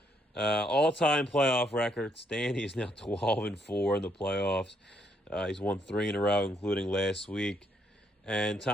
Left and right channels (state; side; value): normal; both; correlation 0.73